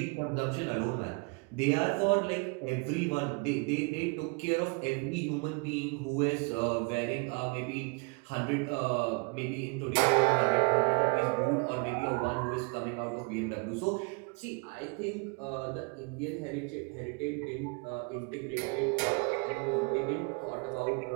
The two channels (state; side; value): quieter; left; 32.2 dB